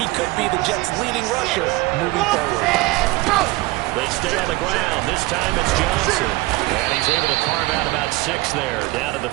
could be the Jets' leading rusher moving forward. They stay on the ground. This time it's Johnson. And he's able to carve out about 6 there, down to the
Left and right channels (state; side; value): quieter; left; 20.7 dB